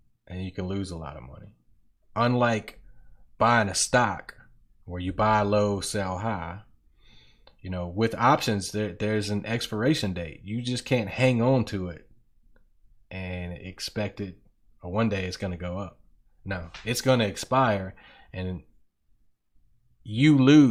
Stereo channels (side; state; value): both; identical; correlation 1.00